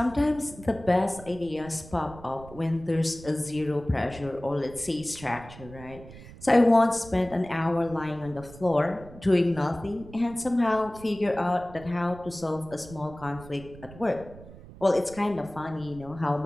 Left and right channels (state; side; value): noise; right; rumble, 17 dB below the sound